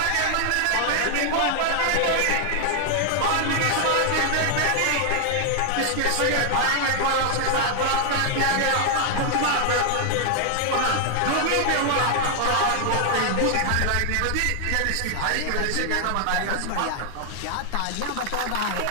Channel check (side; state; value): both; different; correlation 0.00